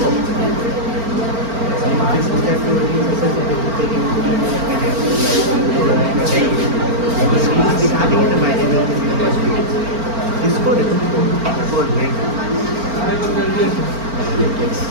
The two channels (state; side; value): late; left; 4.4 ms